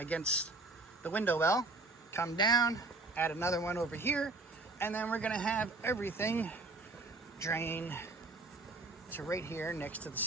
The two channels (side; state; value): left; quieter; 3.3 dB